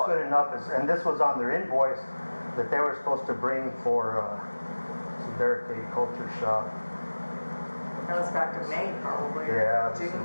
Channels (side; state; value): both; inverted; correlation -1.00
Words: good enough. And this was on their invoice that they were supposed to bring for some barricade culture shop. That was back to May, probably. Yeah. June